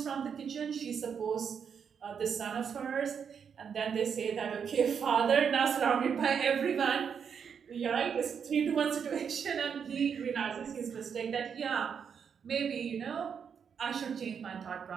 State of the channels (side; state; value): left; quieter; 7.1 dB